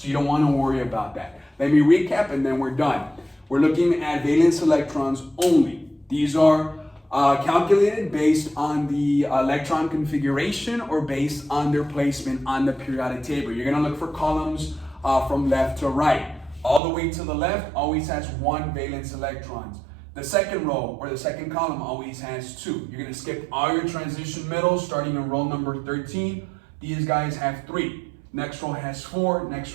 you don't want to worry about that. Let me recap and then we're done. We're looking at valence electrons only. These are calculated based on the electron configuration or based on their placement on the periodic table. You're going to look for columns from left to right. All the way to the left always has 1 valence electrons. The second row or the second column always has 2. You're going to skip all your transition middles starting in row number 13. These guys have 3. Next row has 4. Next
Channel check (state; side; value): drops out; left; at 16.8 s